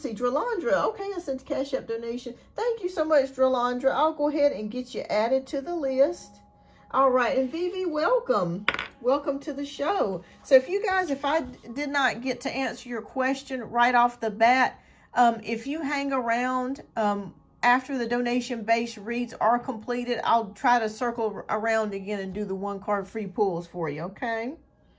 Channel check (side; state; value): both; identical; correlation 1.00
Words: Dralandra. Okay, I sent a Cash App donation. Thank you so much, Dralandra. I'll go ahead and get you added to the list. All right, and Vivi, welcome. Welcome to the show. So if you guys, if I did not get to answer your question right off the bat, if you hang around after the donation-based reads are completed, I'll try to circle around again and do the 1 card free pulls for you, okay?